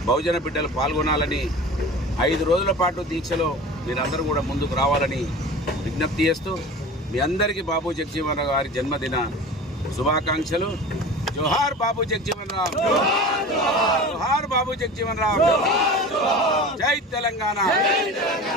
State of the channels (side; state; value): both; normal; correlation 0.35